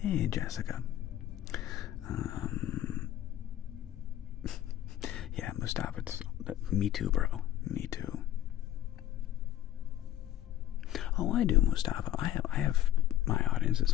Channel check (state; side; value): quieter; right; 12.9 dB